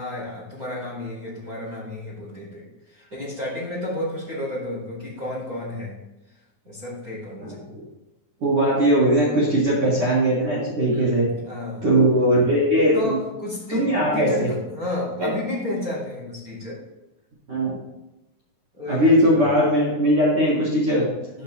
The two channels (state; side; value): late; left; 9.5 ms